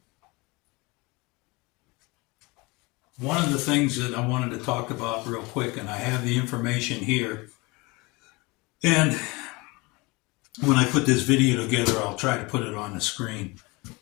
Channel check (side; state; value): right; quieter; 25.3 dB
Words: one of the things that I wanted to talk about real quick, and I have the information here, and when I put this video together, I'll try to put it on the screen.